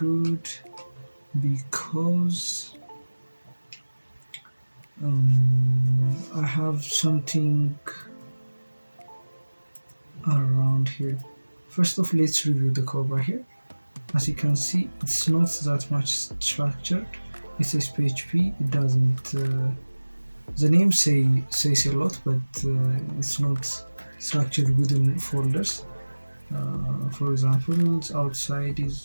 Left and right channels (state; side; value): inverted; both; correlation -1.00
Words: Because I have something around here. First off, let's review the code right here. As you can see, it's not that much structured. It says PHP. It doesn't. The name says a lot, but it's not structured within folders. For example, outside